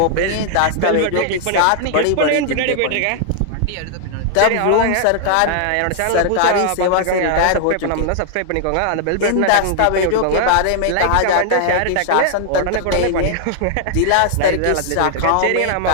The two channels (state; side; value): different; both; correlation 0.00